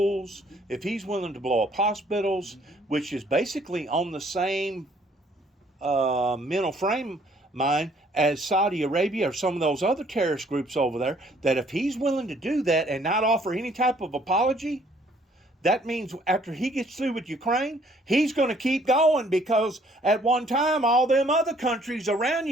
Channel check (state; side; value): normal; both; correlation 0.62